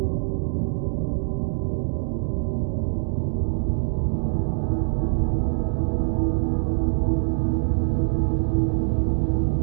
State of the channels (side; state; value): left; silent; digital silence